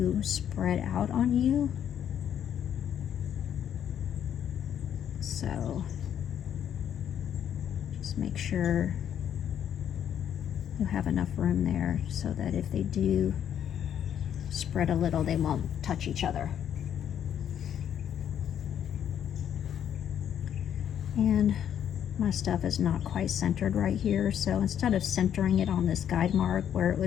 spread out on you. So just make sure you have enough room there so that if they do spread a little, they won't touch each other. And my stuff is not quite centered right here, so instead of centering it on this guide mark where it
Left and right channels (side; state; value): right; quieter; 9.5 dB